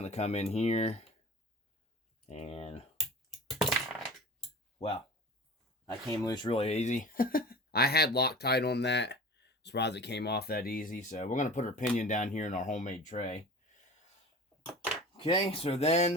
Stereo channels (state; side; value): normal; both; correlation 0.38